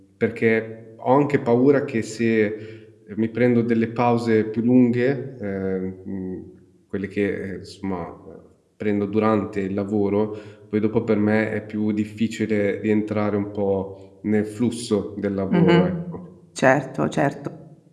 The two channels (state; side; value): identical; both; correlation 1.00